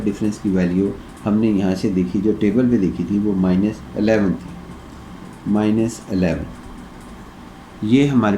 डिफरेंस की वैल्यू हमने यहाँ से देखी, जो टेबल पे देखी थी, वो -11 थी, -11 ये हमारे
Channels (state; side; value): identical; both; correlation 1.00